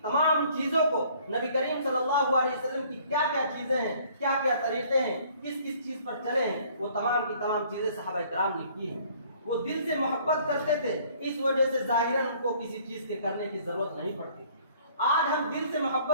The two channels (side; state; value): both; inverted; correlation -0.57